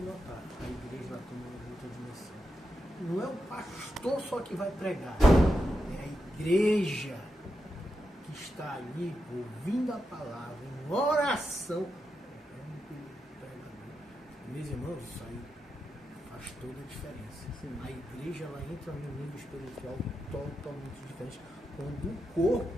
notar, a igreja ela toma uma outra dimensão. Não é o pastor só que vai pregar, é a igreja que está ali ouvindo a palavra, em oração. Meus irmãos, isso aí faz toda a diferença. Sim. A igreja ela entra num nível espiritual totalmente diferente. Quando o corpo,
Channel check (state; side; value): normal; both; correlation 0.87